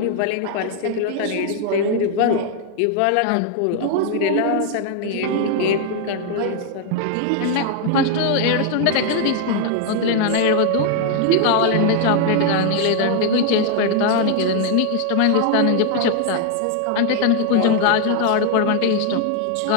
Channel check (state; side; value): different; both; correlation 0.00